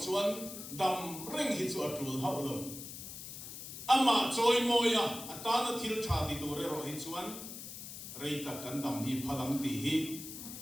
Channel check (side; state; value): left; noise; hiss, 10 dB below the sound